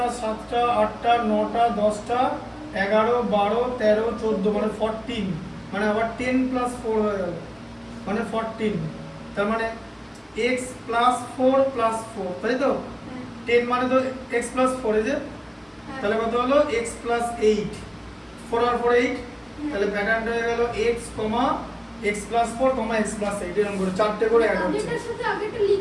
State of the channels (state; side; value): identical; both; correlation 1.00